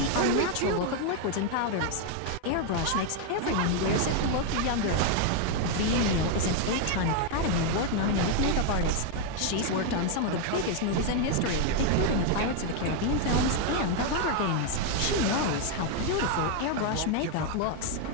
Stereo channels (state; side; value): different; both; correlation 0.01